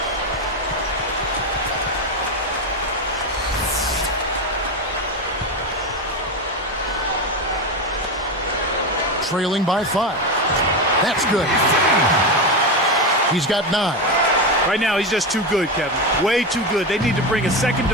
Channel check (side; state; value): both; normal; correlation 0.15